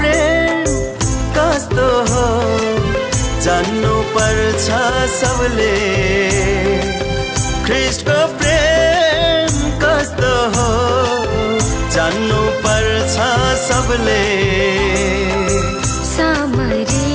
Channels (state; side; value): identical; both; correlation 1.00